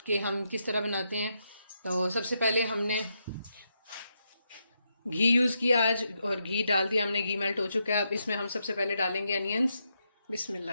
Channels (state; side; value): inverted; both; correlation -0.81